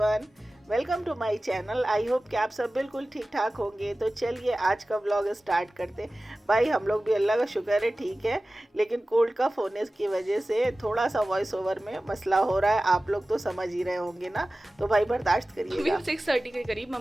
welcome to my channel. I hope कि आप सब बिल्कुल ठीक ठाक होंगे। तो चलिए आज का व्लॉग स्टार्ट करते। भाई हम लोग भी अल्लाह का शुक्र है ठीक है, लेकिन कोल्ड का होने की वजह से थोड़ा सा वॉइस ओवर में मसला हो रहा है। आप लोग तो समझ ही रहे होंगे ना, तो भाई बर्दाश्त करिएगा। 6:30 के करीब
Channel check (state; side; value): normal; both; correlation 0.96